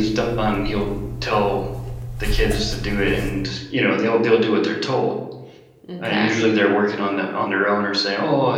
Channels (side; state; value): both; identical; correlation 1.00